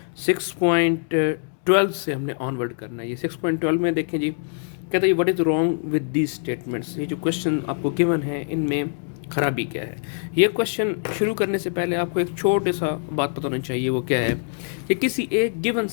6.12 से हमने ऑनवर्ड करना है। ये 6.12 में देखें जी, कहते हैं what is wrong with these statements. ये जो क्वेश्चन आपको गिवन है इनमें खराबी क्या है। ये क्वेश्चन शुरू करने से पहले आपको एक छोटे सा बात पता होनी चाहिए। वो क्या है कि किसी एक गिवन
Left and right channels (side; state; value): right; silent; digital silence